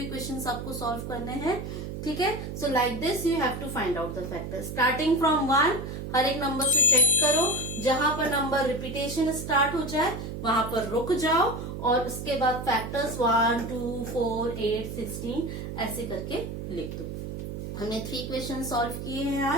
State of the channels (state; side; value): noise; right; hum, 7 dB below the sound